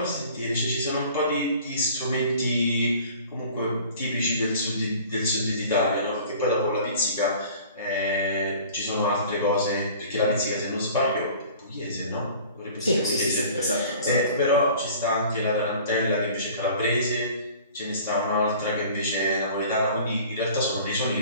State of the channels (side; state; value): both; inverted; correlation -0.47